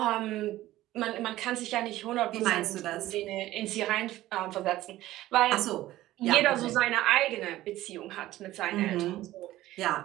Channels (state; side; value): quieter; left; 15.6 dB